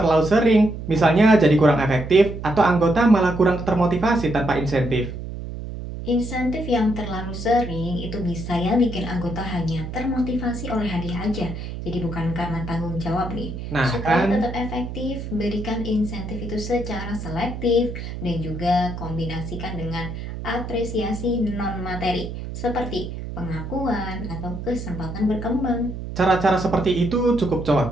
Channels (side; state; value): right; noise; hum, 8 dB below the sound